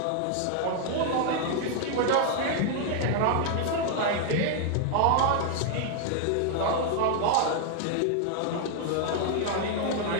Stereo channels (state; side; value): different; both; correlation 0.00